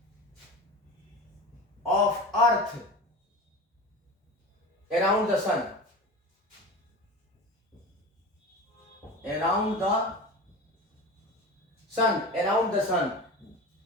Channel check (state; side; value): normal; both; correlation 0.30